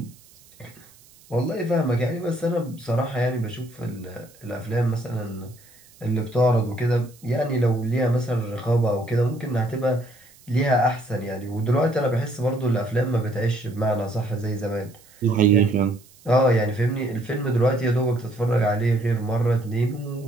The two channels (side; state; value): right; noise; hiss, 26 dB below the sound